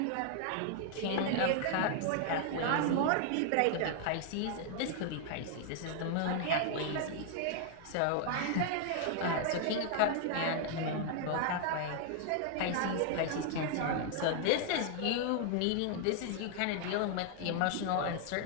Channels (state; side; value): different; both; correlation 0.00